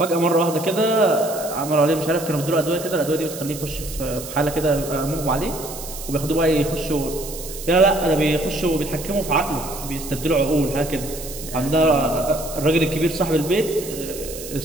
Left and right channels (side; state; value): right; noise; hiss, 11 dB below the sound